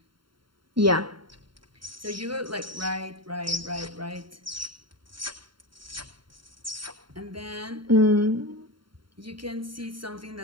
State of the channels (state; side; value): late; left; 0.73 ms